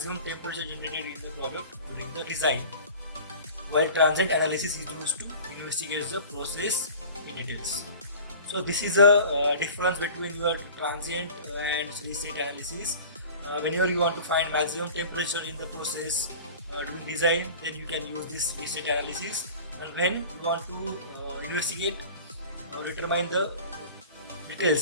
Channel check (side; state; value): both; inverted; correlation -0.40